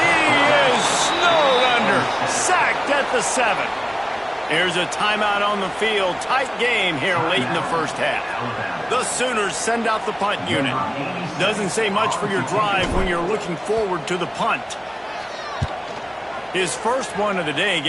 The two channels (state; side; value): identical; both; correlation 1.00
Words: he is snowed under. Sacked at the 7. There's a timeout on the field. Tight game here late in the first half. The Sooners send out the punt unit. Doesn't say much for your drive when you're looking forward to the punt. His first one of the day